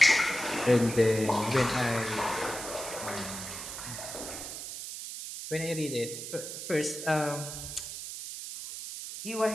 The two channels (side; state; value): right; noise; hiss, 8 dB below the sound